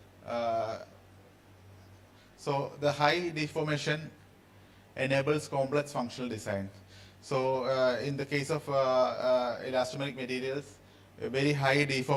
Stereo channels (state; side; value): identical; both; correlation 1.00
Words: So the high deformation enables complex functional design. So in the case of elastomeric materials, a very high